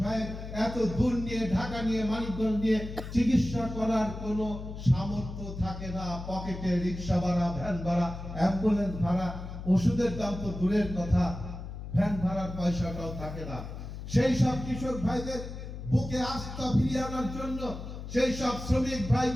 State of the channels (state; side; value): noise; left; hum, 9 dB below the sound